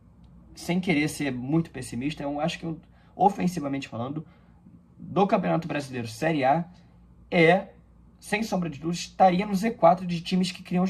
sem querer ser muito pessimista, eu acho que, ofensivamente falando, do Campeonato Brasileiro Série A, sem sombra de dúvidas, estaria no Z4 de times que criam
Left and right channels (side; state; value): both; identical; correlation 1.00